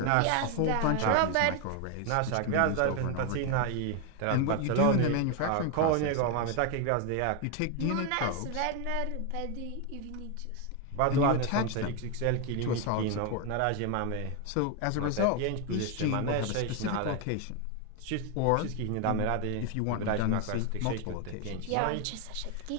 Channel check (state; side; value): different; both; correlation 0.01